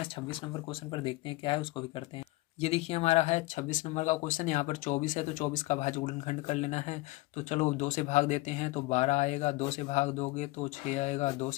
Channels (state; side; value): quieter; right; 21.2 dB